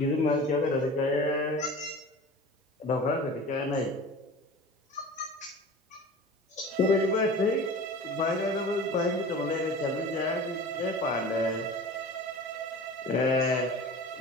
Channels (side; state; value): both; normal; correlation 0.37